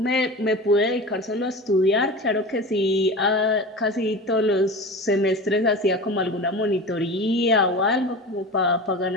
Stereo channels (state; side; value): normal; both; correlation 0.31